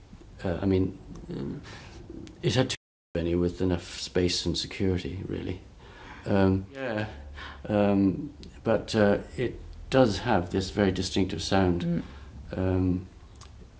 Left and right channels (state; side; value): identical; both; correlation 1.00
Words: I mean, it had too many with enough space and security, really. But it does have this very distinctive sound.